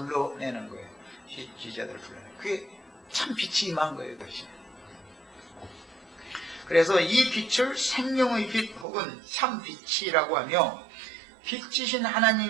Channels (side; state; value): left; drops out; at 8.8 s